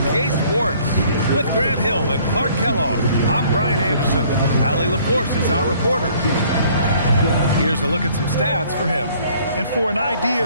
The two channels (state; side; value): inverted; both; correlation -0.58